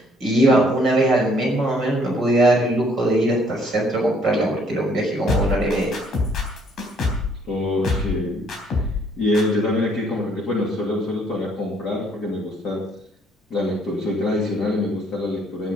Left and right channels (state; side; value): normal; both; correlation 0.64